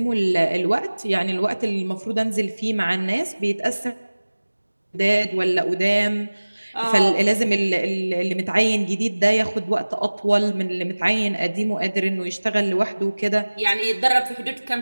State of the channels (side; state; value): both; inverted; correlation -1.00